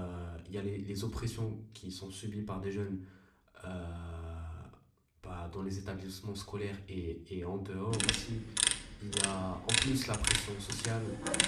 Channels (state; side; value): identical; both; correlation 1.00